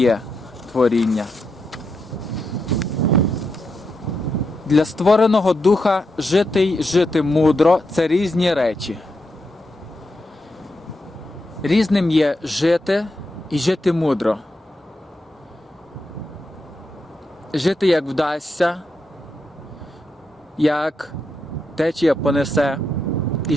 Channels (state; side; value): normal; both; correlation 0.84